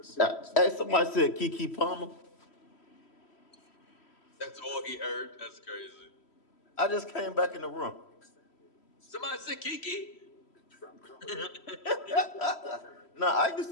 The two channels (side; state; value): right; late; 3.1 ms